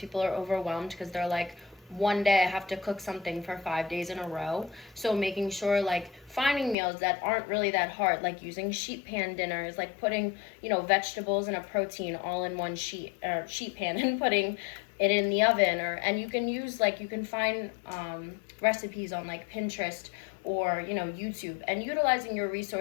are overwhelmed because they're like, one day I have to cook something for 5 days in a row. So making sure like finding meals that aren't really that hard, like using sheet pan dinners, like putting, vegetables and a protein all in one sheet pan and putting it in the oven, and you can find recipes on like Pinterest or YouTube, and utilizing your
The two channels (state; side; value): drops out; right; at 6.8 s